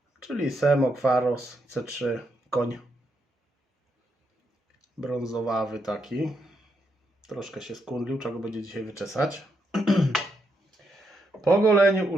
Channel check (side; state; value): both; normal; correlation 0.80